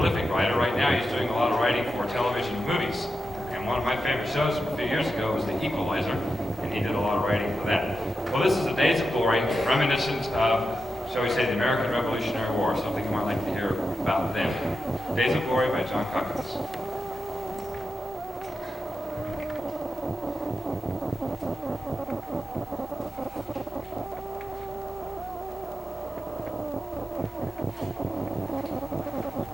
writer. Right now he's doing a lot of writing for television and movies. And one of my favorite shows from a few years ago was The Equalizer, and he did a lot of writing for that. Well, this is the Days of Glory, reminiscent of, shall we say, the American Revolutionary War, something you might like to hear about them. Days of Glory by John Kakavas.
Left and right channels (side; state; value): both; normal; correlation 0.90